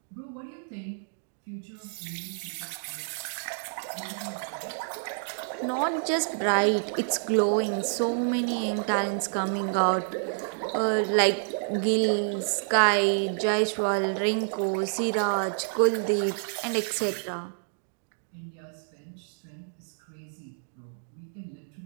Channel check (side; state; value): left; silent; digital silence